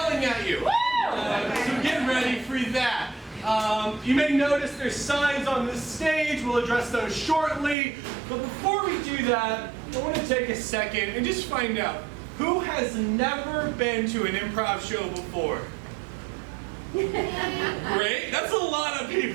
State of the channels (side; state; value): left; drops out; at 7.8 s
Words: at you. So get ready for that. You may notice there's signs on this stage. We'll address those shortly. But before we do that, I want to take a second and just find out who has never been to an improv show before. Great, that's a lot of